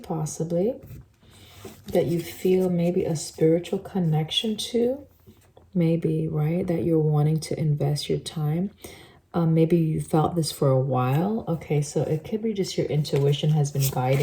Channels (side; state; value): both; identical; correlation 1.00